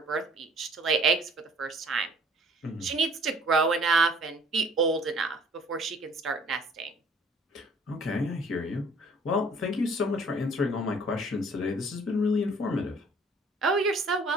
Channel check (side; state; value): both; normal; correlation 0.54